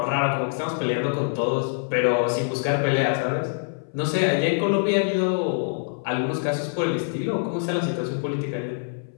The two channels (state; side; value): silent; right; 59 dB below the other